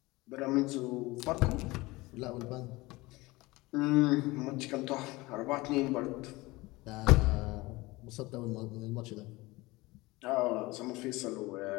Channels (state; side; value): quieter; right; 21.4 dB